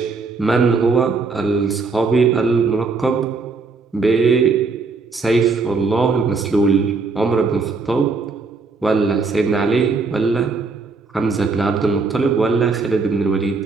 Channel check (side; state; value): left; quieter; 4.3 dB